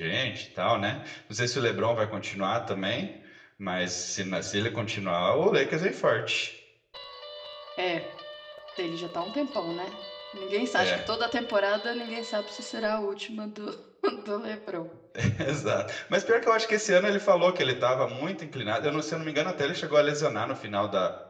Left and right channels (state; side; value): identical; both; correlation 1.00